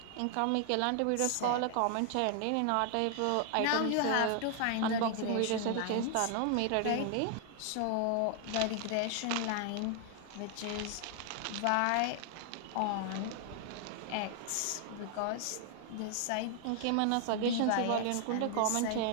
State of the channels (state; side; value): different; both; correlation 0.00